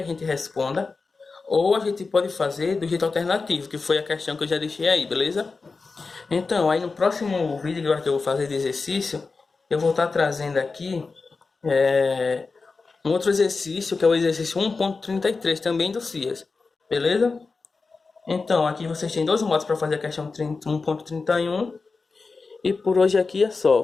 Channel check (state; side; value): quieter; right; 4.2 dB